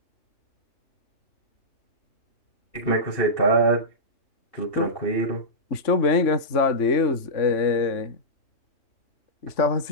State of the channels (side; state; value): right; late; 3.5 ms